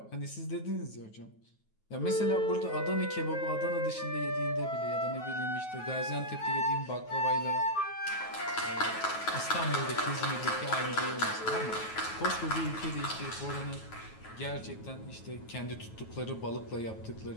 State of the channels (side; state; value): right; late; 9.3 ms